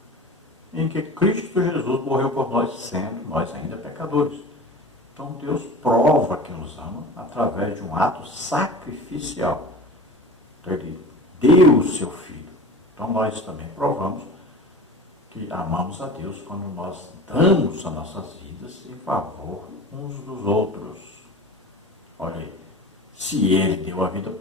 em que Cristo Jesus morreu por nós, sendo nós ainda pecadores. Então, Deus prova que nos ama através de um ato sacrificial. Então, Ele deu o seu Filho. Então, nós também provamos que amamos a Deus quando nós damos as nossas vidas em favor uns dos outros. Olha aí, se Ele deu a vida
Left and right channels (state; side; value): normal; both; correlation 0.36